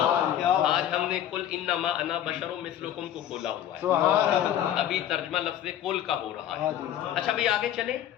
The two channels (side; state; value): right; quieter; 11.2 dB